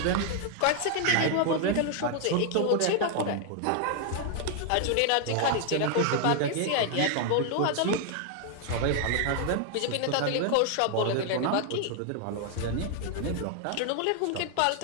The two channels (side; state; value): both; different; correlation 0.00